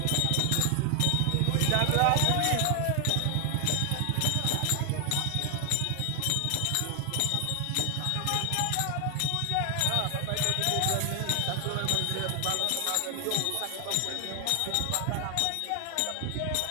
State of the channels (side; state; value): both; different; correlation 0.00